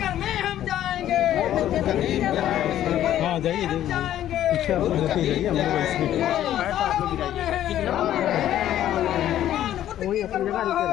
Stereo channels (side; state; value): right; quieter; 12.0 dB